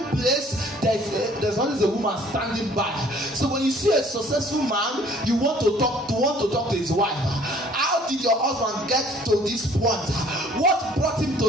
place, there's always a woman standing by. So when you see a successful man, you want to talk to his wife. How did your husband get to this point? What brought him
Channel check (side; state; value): both; normal; correlation 0.56